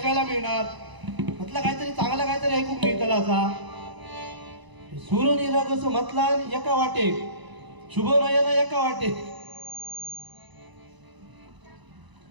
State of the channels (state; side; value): late; left; 1.0 ms